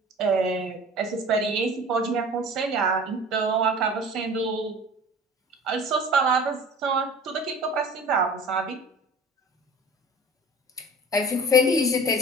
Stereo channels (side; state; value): both; normal; correlation 0.42